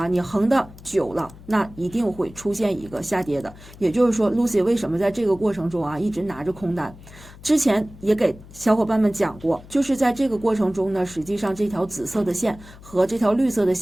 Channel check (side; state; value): left; noise; hum, 19 dB below the sound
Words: 你横的久了，那一定会出现一个下跌的。也就是说 Lucy 为什么在这个过程中一直拿着空单，之前也给小伙伴们讲过，就是在这个过程中呢，实际上这条紫色的线和这条绿色的